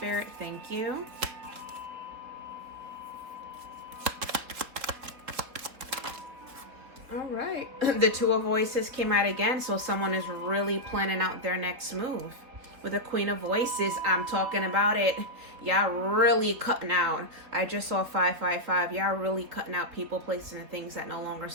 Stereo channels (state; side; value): late; left; 3.5 ms